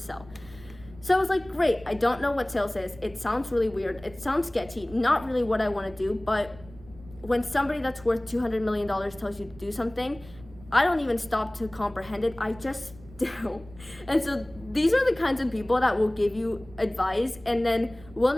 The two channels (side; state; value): right; noise; rumble, 21 dB below the sound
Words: So I was like, great, I don't know what sales is. It sounds really weird. It sounds sketchy, not really what I want to do. But when somebody that's worth $200 million tells you to do something, I don't even stop to comprehend it. I just do. And so these are the kinds of people that will give you advice and then will